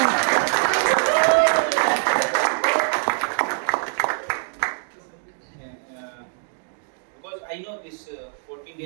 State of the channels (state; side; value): silent; left; digital silence